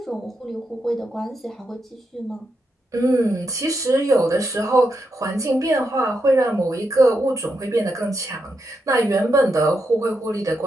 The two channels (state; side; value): normal; both; correlation 0.84